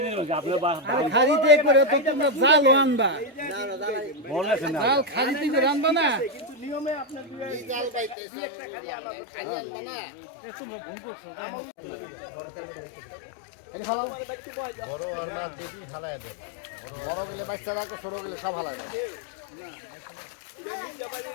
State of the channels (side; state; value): right; drops out; at 8.2 s